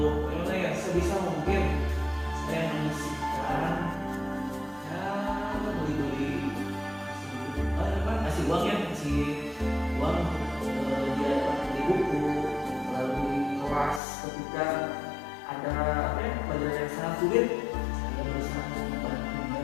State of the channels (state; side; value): drops out; right; at 14.0 s